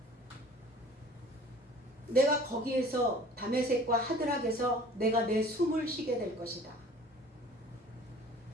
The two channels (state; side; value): normal; both; correlation 0.48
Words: 내가 거기에서 다메섹과 하드락에서 내가 내 숨을 쉬게 될 것이다.